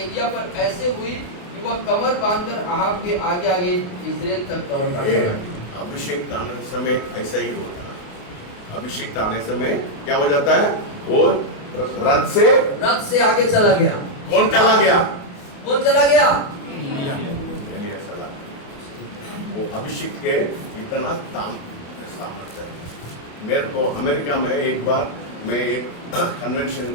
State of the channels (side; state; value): right; late; 28 ms